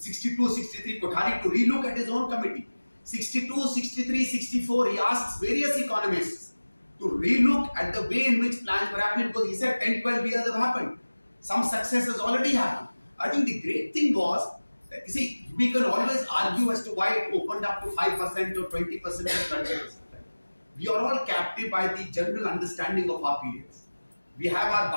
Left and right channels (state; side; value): inverted; both; correlation -1.00